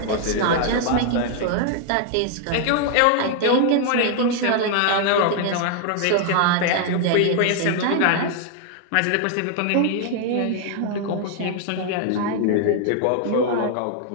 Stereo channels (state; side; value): different; both; correlation 0.00